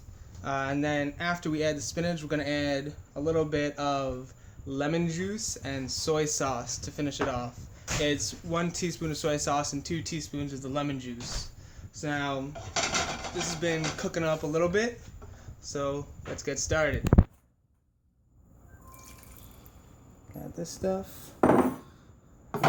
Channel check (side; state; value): both; identical; correlation 1.00